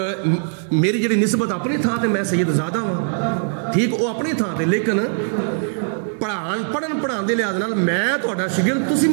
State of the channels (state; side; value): silent; left; 65 dB below the other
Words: ਮੇਰੀ ਜਿਹੜੀ ਨਿਸਬਤ ਆਪਣੀ ਥਾਂ ਤੇ ਮੈਂ ਸੈਯਦਜ਼ਾਦਾ ਵਾਂ, ਠੀਕ ਉਹ ਆਪਣੀ ਥਾਂ ਤੇ, ਲੇਕਿਨ ਪੜ੍ਹਨ ਪੜ੍ਹਾਉਣ ਦੇ ਲਿਹਾਜ਼ ਨਾਲ ਮੈਂ ਤੁਹਾਡਾ ਸ਼ਾਗਿਰਦ, ਤੁਸੀਂ